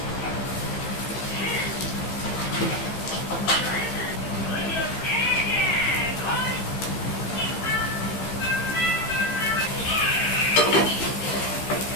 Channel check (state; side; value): late; right; 15 ms